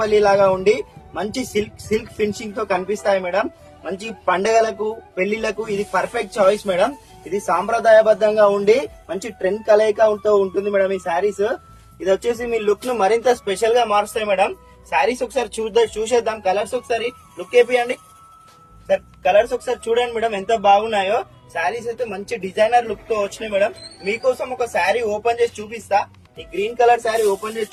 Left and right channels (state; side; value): identical; both; correlation 1.00